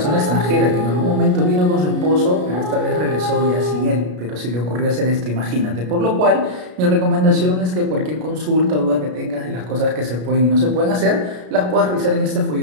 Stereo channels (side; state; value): left; late; 33 ms